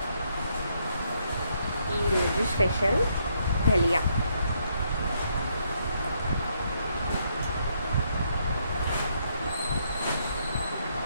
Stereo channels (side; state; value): both; inverted; correlation -0.73